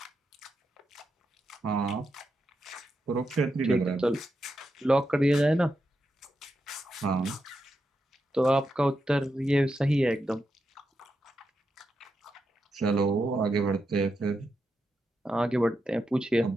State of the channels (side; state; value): both; normal; correlation 0.86